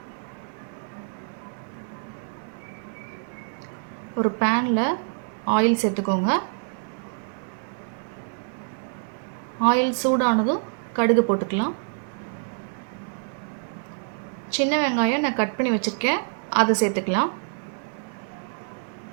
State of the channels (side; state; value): left; silent; digital silence